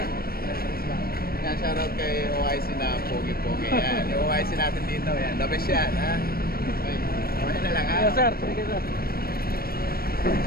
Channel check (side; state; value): right; late; 0.44 ms